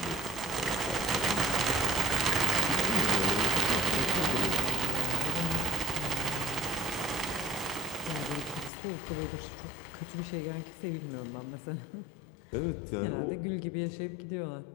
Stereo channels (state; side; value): drops out; right; at 8.7 s